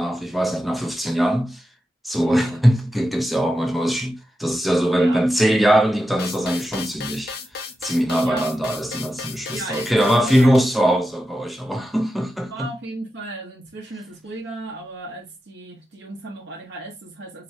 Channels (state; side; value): normal; both; correlation 0.90